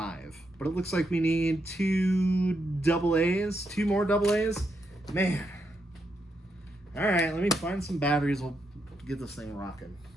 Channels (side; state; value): both; normal; correlation 0.81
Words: But it looks like we need two more double A's. Man. All right, let me find some batteries. We'll get this thing rocking.